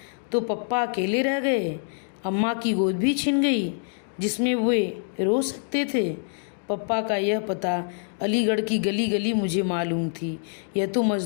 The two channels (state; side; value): silent; right; digital silence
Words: तो पप्पा अकेले रह गए। अम्मा की गोद भी छिन गई जिसमें वे रो सकते थे। पप्पा का यह पता अलीगढ़ की गली गली मुझे मालूम थी। यह तो